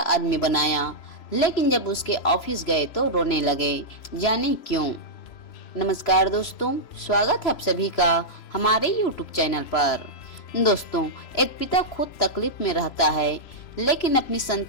बनाया, लेकिन जब उसके ऑफिस गए तो रोने लगे। जाने क्यों? नमस्कार दोस्तों, स्वागत है आप सभी का हमारे YouTube चैनल पर। दोस्तों, एक पिता खुद तकलीफ में रहता है, लेकिन अपनी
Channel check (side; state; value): right; late; 3.0 ms